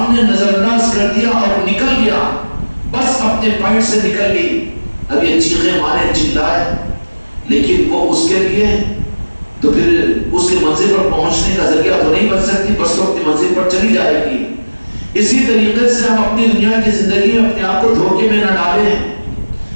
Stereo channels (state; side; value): inverted; both; correlation -1.00